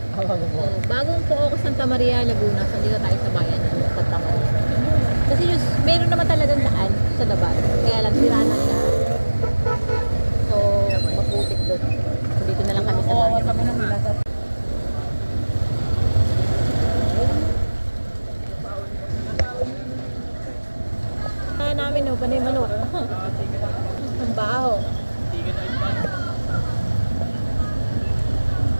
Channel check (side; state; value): both; inverted; correlation -1.00